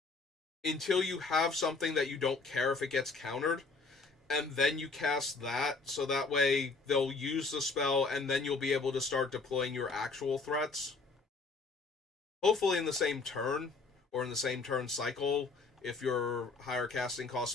until you have something that you don't care if it gets countered, and then you cast that, so that way they'll use the spell, and then you'll be able to start deploying your actual threats. Hopefully in the same turn, or in the same turn cycle, if your higher casting cost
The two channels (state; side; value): quieter; right; 4.0 dB